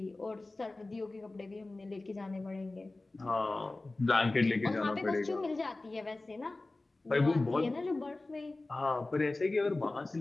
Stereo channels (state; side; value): quieter; right; 3.1 dB